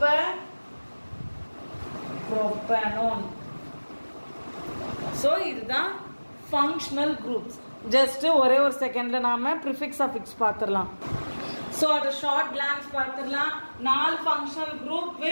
ப்ரோப்பனோன். ஸோ இதுதான் ஃபங்க்ஷனல் குரூப்ஸ். ஜஸ்ட் ஒரே ஒரு செகண்ட்ல நாம ப்ரிஃபிக்ஸ் அஃபிக்ஸ் பார்த்துடலாம். ஸோ அது ஷார்ட் கிளான்ஸ் பார்த்துடலாம். 4 ஃபங்க்ஷனல் குரூப்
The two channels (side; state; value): both; inverted; correlation -1.00